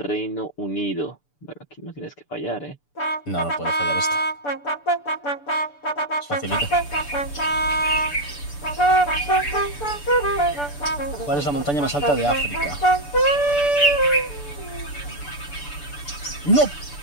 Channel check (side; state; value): right; late; 6.9 ms